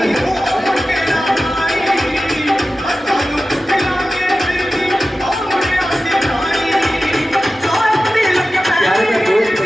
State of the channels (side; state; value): both; normal; correlation 0.94